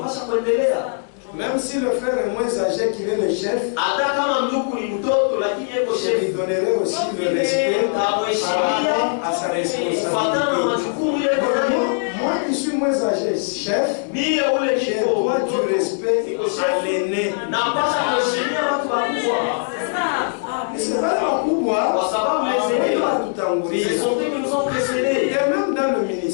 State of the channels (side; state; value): right; silent; digital silence